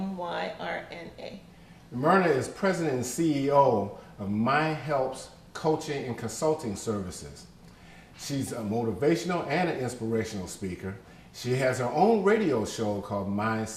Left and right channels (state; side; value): identical; both; correlation 1.00